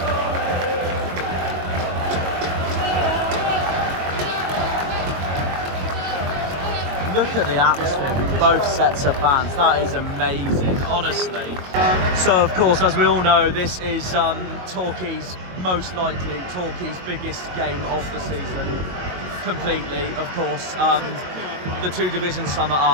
Look at the atmosphere with both sets of fans. That is amazing, honestly. So, of course, as we all know, this is Torquay's biggest game of the season. Completely, of course. The two divisions sum it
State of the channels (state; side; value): late; left; 22 ms